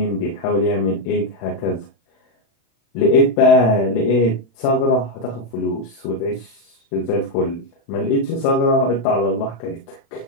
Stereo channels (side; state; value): right; late; 36 ms